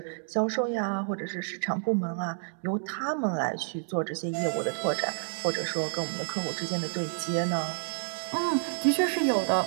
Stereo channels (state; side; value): silent; left; digital silence